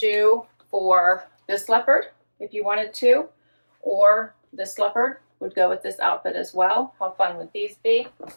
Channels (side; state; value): both; inverted; correlation -1.00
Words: for this leopard if you wanted to, or this leopard would go with this outfit as well. How fun would these be?